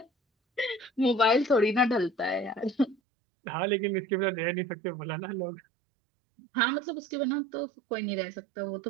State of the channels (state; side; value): drops out; left; at 3.0 s